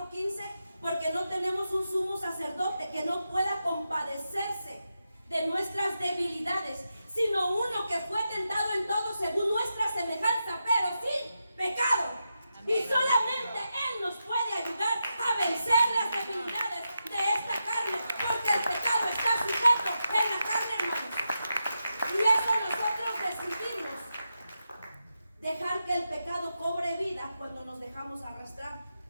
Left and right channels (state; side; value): inverted; both; correlation -0.88